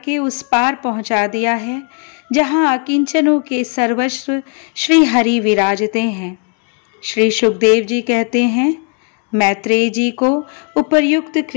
उस पार पहुंचा दिया है जहां अकिंचनों के सर्वस्व श्री हरि विराजते हैं। श्री सुखदेव जी कहते हैं, मैत्रेय जी को उपर्युक्त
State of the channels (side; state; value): right; quieter; 39.8 dB